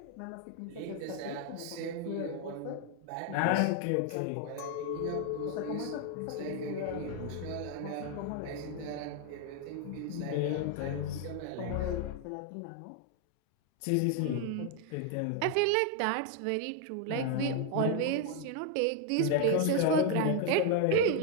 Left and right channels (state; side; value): different; both; correlation 0.00